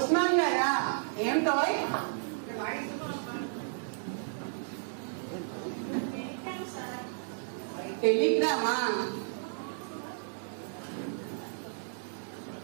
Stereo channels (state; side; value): silent; left; 56 dB below the other